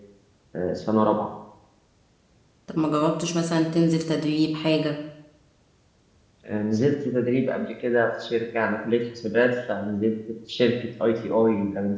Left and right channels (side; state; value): both; identical; correlation 1.00